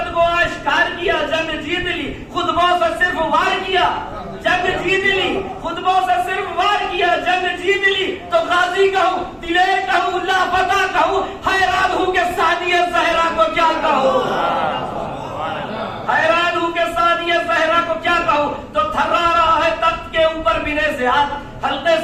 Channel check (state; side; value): identical; both; correlation 1.00